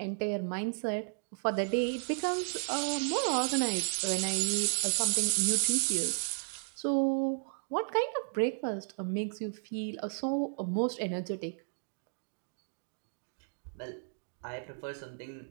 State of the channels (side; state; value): left; silent; digital silence